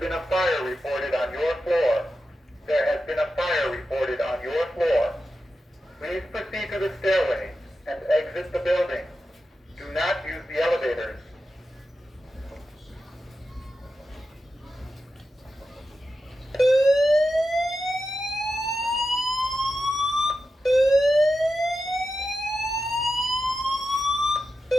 been a fire reported on your floor. There has been a fire reported on your floor. Please proceed to the stairway and exit the building. Do not use the elevators.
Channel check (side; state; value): both; normal; correlation 0.90